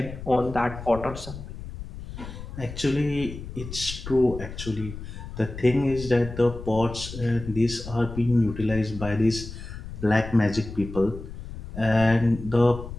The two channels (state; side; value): noise; left; rumble, 11 dB below the sound